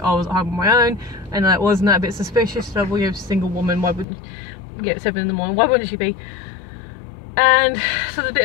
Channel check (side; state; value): right; drops out; at 4.0 s